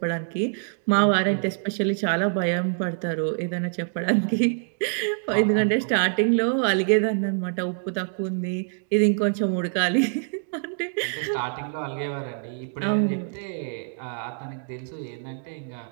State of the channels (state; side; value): silent; left; digital silence